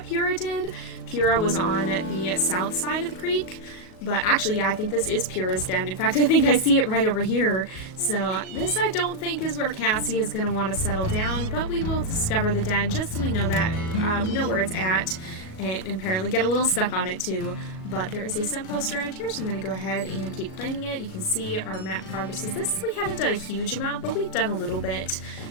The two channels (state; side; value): late; right; 37 ms